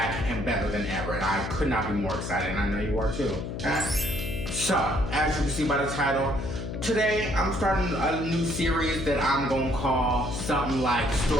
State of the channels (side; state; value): left; noise; hum, 5 dB below the sound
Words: and better than ever. And I could not be more excited, and I know you are too. So, as you can see by the title, today I'm starting a new series that I'm gonna call something like